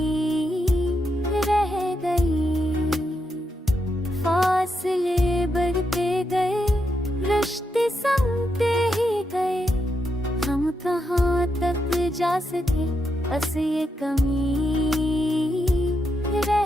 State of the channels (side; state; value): both; normal; correlation 0.83